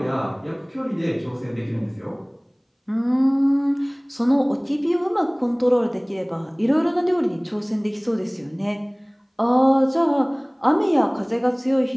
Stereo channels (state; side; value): identical; both; correlation 1.00